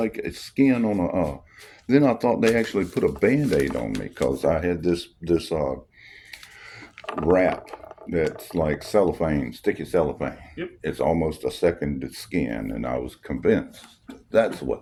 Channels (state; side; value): identical; both; correlation 1.00